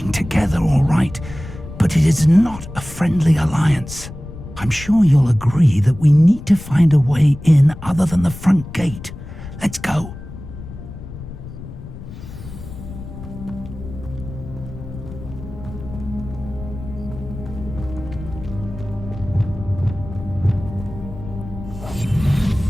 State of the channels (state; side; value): noise; left; rumble, 12 dB below the sound